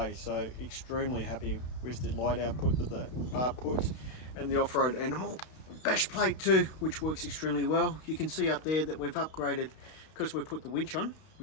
so extremely happy with the light output that the bar puts. And the Offroad Animal bash plate too, which works extremely well. You can see up there that we've upgraded because we've put the winch on,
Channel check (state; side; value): late; right; 32 ms